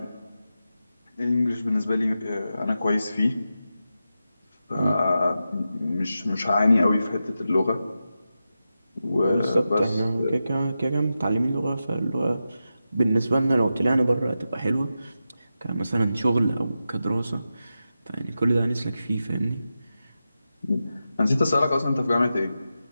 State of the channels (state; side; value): inverted; both; correlation -0.90